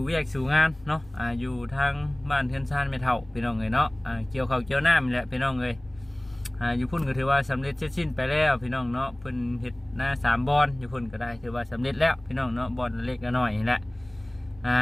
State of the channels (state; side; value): noise; left; rumble, 23 dB below the sound